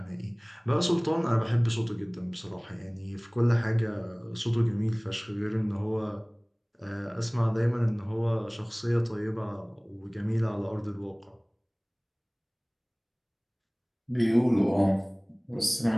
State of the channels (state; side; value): identical; both; correlation 1.00